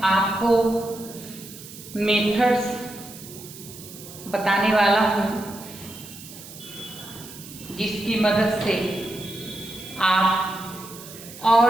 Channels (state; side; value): noise; right; hiss, 16 dB below the sound